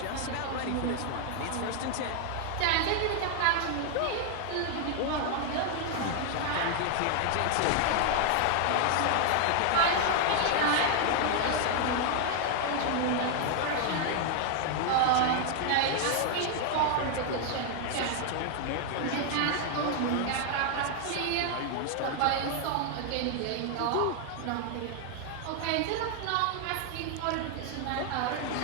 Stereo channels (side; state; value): both; different; correlation 0.00